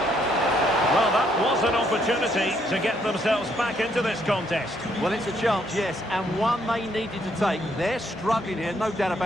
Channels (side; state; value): left; noise; hum, 24 dB below the sound